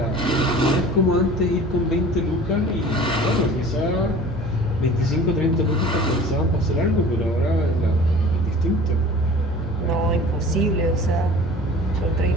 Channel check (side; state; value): both; normal; correlation 0.43